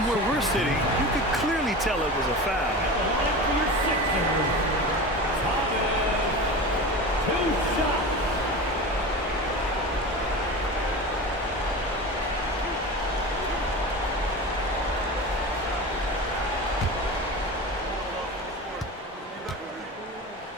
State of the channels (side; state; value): both; normal; correlation 0.29